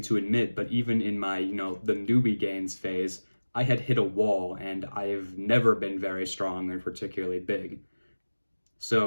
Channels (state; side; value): inverted; both; correlation -1.00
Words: to admit, but even in my, the newbie gains phase, I had hit a wall, and I've never been very strong or particularly big.